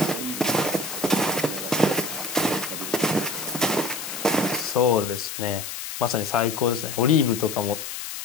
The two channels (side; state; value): left; noise; hiss, 7 dB below the sound